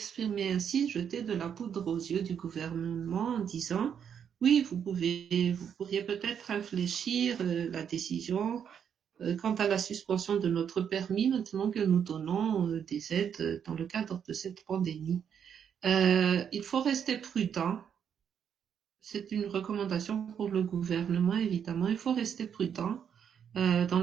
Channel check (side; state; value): left; quieter; 8.0 dB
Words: ainsi, jeter de la poudre aux yeux du gouvernement en disant oui, vous pourriez peut-être réfléchir la décision quant à la suspension de notre permis maintenant que nous donnons des aides dans le cadre de cette pandémie. Il faut rester prudent. C'est une recommandation pour le gouvernement, évidemment. Il faut rester prudent dans